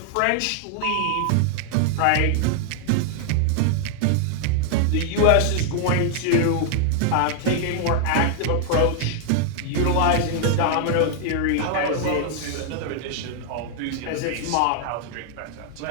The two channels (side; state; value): both; different; correlation 0.00